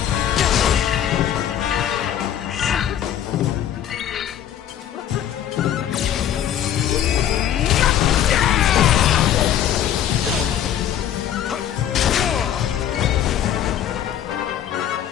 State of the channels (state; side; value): quieter; right; 10.4 dB